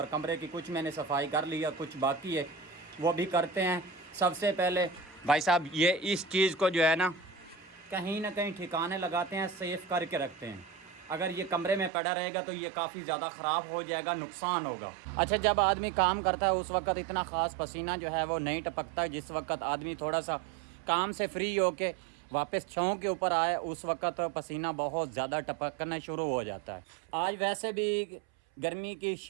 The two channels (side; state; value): left; drops out; at 11.9 s